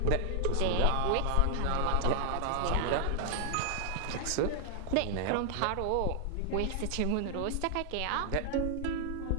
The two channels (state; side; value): different; both; correlation 0.00